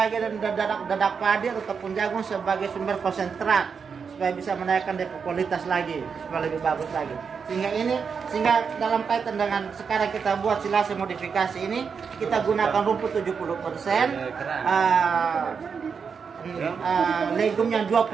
dadak padi atau tepung jagung sebagai sumber konsentrat supaya bisa menaikkan kualitas lagi supaya lebih bagus lagi. Sehingga dalam kaitan dengan sekarang kita buat silase modifikasi ini kita gunakan rumput 70%, legumnya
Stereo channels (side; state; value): left; quieter; 6.0 dB